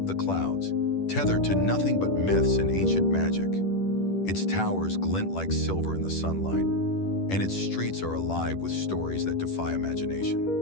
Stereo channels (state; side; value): late; right; 10 ms